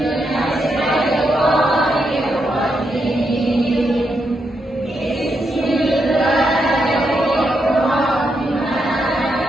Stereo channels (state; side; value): normal; both; correlation 0.81